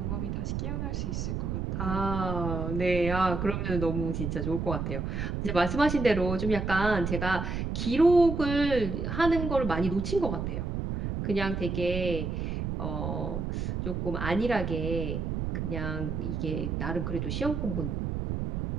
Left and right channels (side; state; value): right; noise; rumble, 2 dB below the sound